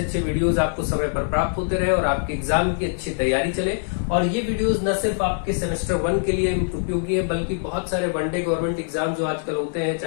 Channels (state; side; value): silent; right; digital silence